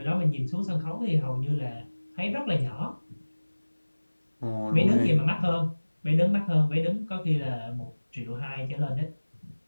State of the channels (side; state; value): both; inverted; correlation -1.00